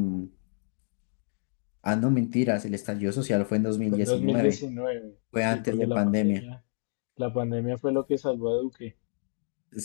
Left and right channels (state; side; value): silent; right; digital silence